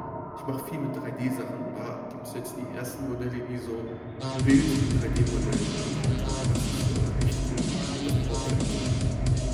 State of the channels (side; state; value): both; identical; correlation 1.00